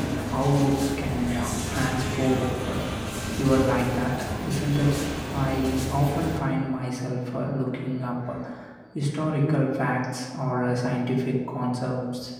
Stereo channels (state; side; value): identical; both; correlation 1.00